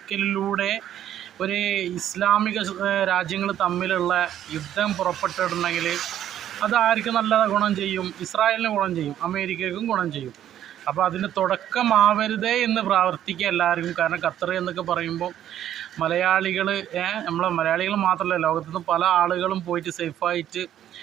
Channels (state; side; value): quieter; left; 11.2 dB